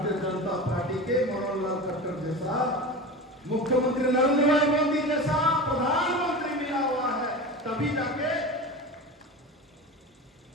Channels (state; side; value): normal; both; correlation 0.29